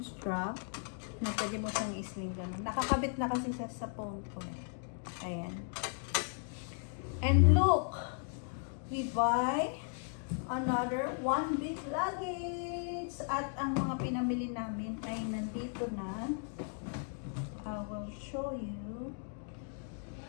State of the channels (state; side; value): silent; right; 54 dB below the other